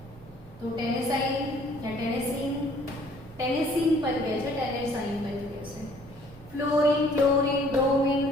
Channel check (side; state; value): both; normal; correlation 0.58